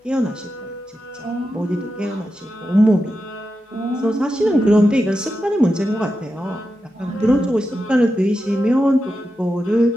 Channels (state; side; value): normal; both; correlation 0.89